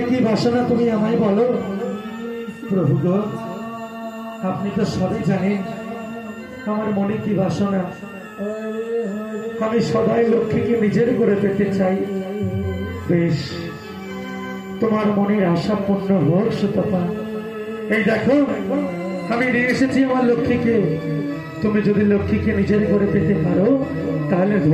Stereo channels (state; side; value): identical; both; correlation 1.00